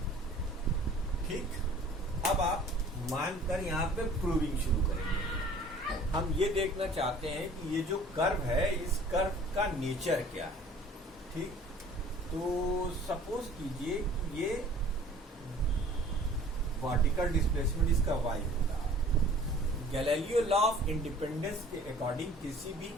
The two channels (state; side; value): normal; both; correlation 0.49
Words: ठीक, अब आप मानकर यहाँ पे प्रूविंग शुरू करेंगे। हम ये देखना चाहते हैं कि ये जो कर्व है, इस कर्व का नेचर क्या है। ठीक, तो सपोज कीजिए कि ये वर्टिकल डिस्प्लेसमेंट इसका y होगा। गैलीलियो लॉ ऑफ इंडिपेंडेंस के अकॉर्डिंग किसी भी